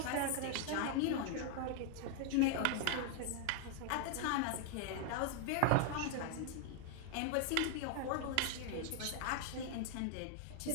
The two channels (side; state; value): both; different; correlation 0.00